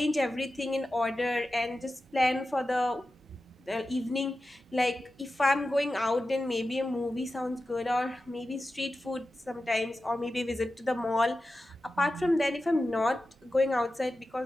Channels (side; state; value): both; normal; correlation 0.93